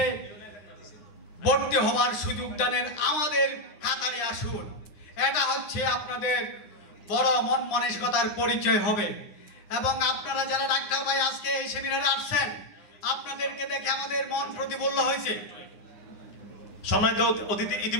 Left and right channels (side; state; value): right; late; 9.8 ms